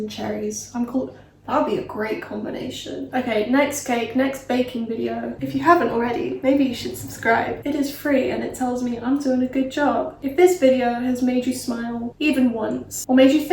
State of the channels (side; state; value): both; identical; correlation 1.00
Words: cherries. That would be a great combination. Okay, next cake, next baking video. If you haven't already, maybe you should subscribe. It is free and it tells me I'm doing a good job. If this video has made you smile even once, or made you